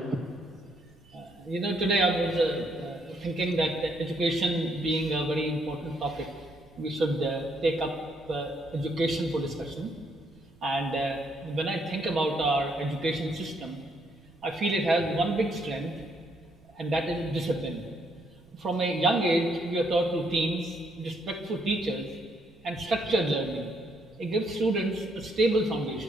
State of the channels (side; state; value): right; noise; rumble, 27 dB below the sound